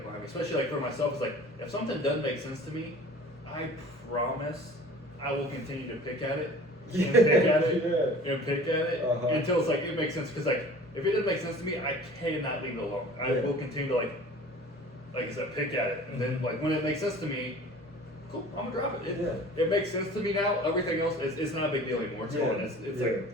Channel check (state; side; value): normal; both; correlation 0.44